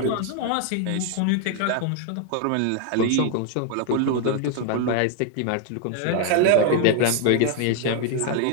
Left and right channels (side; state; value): both; different; correlation 0.00